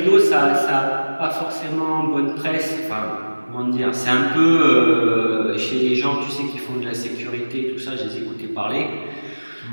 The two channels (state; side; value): inverted; both; correlation -1.00